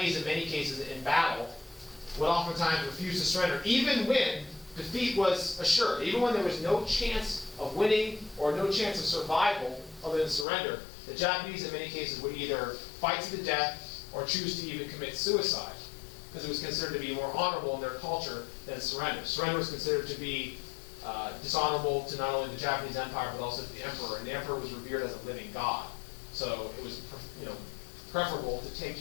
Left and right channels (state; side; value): drops out; right; at 10.5 s